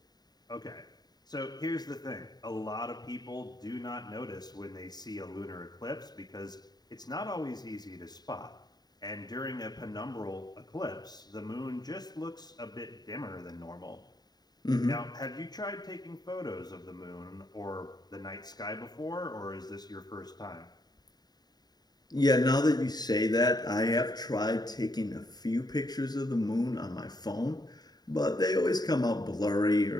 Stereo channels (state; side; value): late; right; 0.20 ms